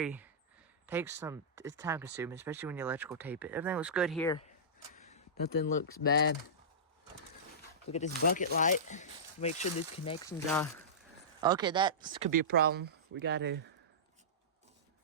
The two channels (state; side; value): normal; both; correlation -0.18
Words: time consuming, especially when you electrical tape it. Everything looks good here. Nothing looks bad. Look at this bucket light. Make sure these connections are... Okay, that could be a problem. We gotta...